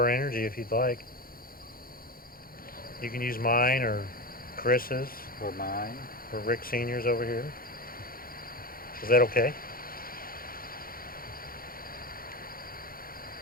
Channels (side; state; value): right; late; 0.42 ms